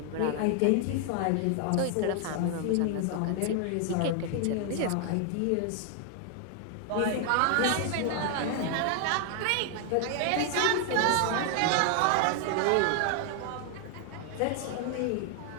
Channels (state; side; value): different; both; correlation 0.00